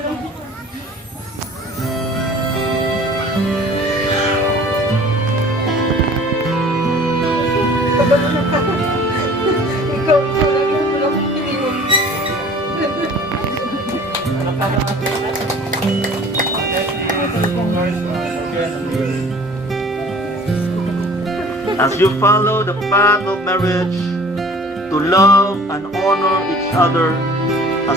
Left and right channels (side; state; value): both; normal; correlation 0.48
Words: lang yung wala kong piliin. As you follow the path of marriage, to love and honor each other